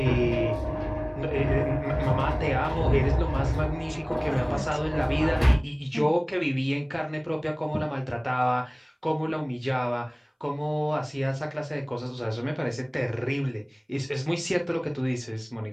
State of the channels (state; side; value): identical; both; correlation 1.00